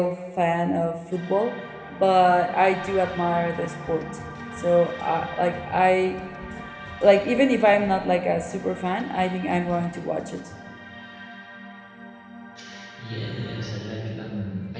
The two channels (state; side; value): identical; both; correlation 1.00